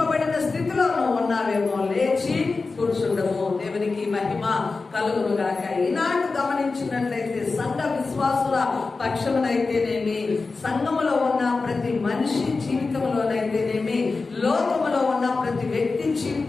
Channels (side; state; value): right; quieter; 4.0 dB